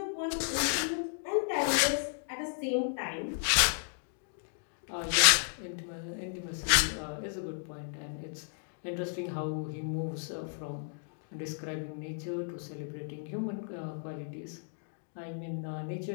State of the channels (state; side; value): silent; right; digital silence